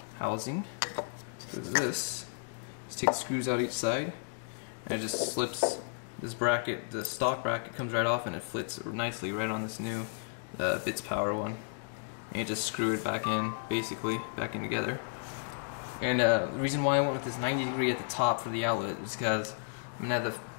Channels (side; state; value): right; silent; digital silence